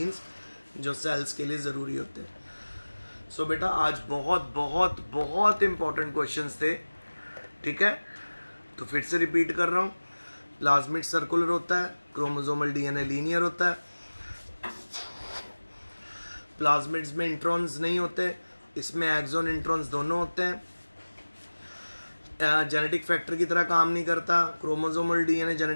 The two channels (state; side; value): inverted; both; correlation -1.00